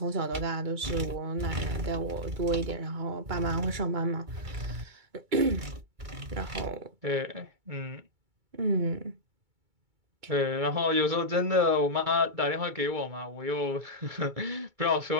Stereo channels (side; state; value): left; late; 2.2 ms